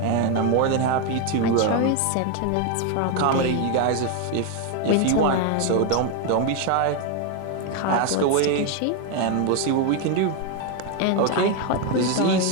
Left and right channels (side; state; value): both; different; correlation 0.01